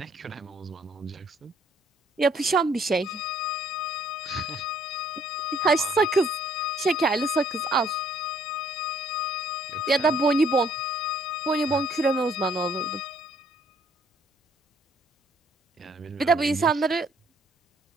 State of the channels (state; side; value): normal; both; correlation 0.63